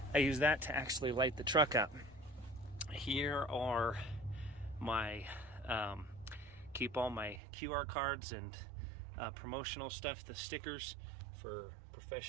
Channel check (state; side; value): drops out; left; at 7.4 s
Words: I use that to actually light the truck up. Here are my, keep all my QR cards and promotional stuff, the stickers for